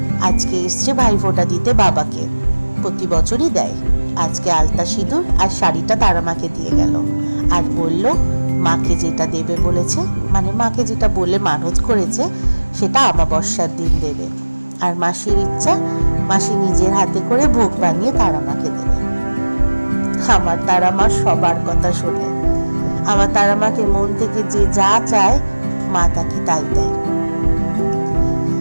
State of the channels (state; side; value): inverted; both; correlation -1.00